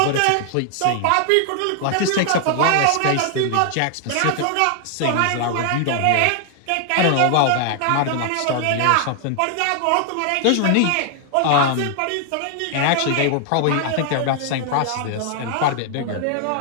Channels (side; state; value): both; different; correlation 0.00